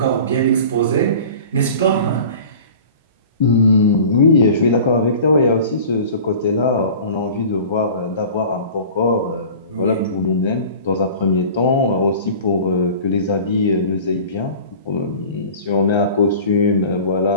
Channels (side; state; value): both; inverted; correlation -0.41